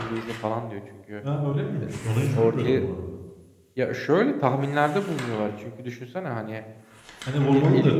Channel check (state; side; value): identical; both; correlation 1.00